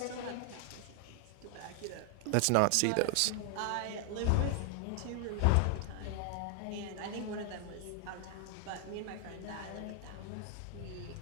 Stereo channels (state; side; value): different; both; correlation 0.00